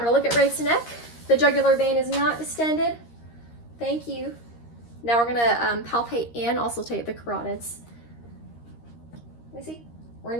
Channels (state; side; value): late; right; 13 ms